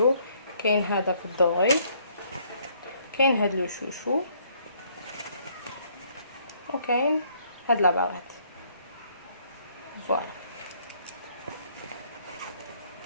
كاين هذا في الدوري، كاين هاد لو شوشو، وكاين هاد لا باغيت. فوالا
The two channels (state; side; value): inverted; both; correlation -0.65